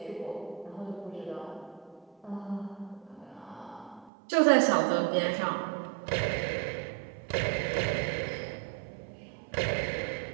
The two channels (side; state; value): left; drops out; at 4.1 s